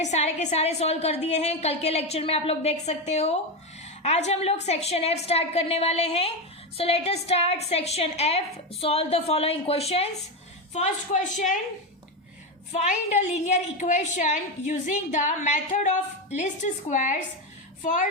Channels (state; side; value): normal; both; correlation 0.12